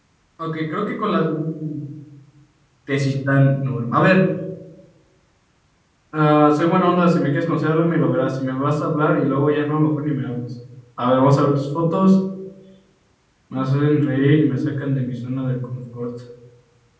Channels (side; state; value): both; identical; correlation 1.00